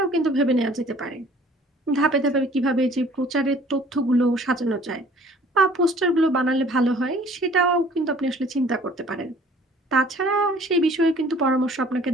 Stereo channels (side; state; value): both; normal; correlation 0.53